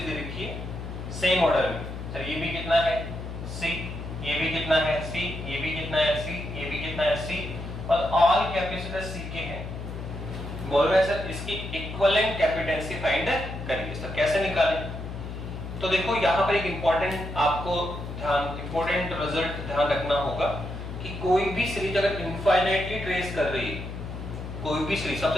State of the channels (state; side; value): noise; left; hum, 8 dB below the sound